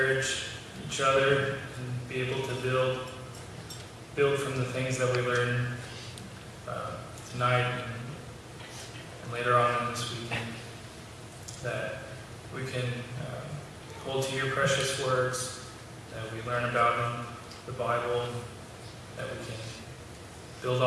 each other and be able to build from the things that we learn tonight and later on in this weekend, that we can hold to your precious words, that we learn about them, the Bible, and that we can build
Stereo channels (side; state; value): both; identical; correlation 1.00